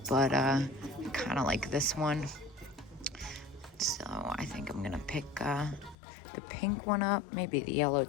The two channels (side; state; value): right; drops out; at 6.0 s